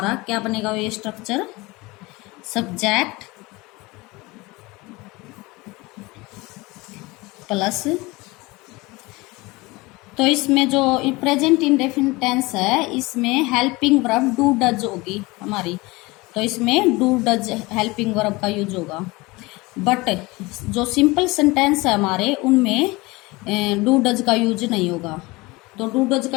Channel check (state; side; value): quieter; right; 22.8 dB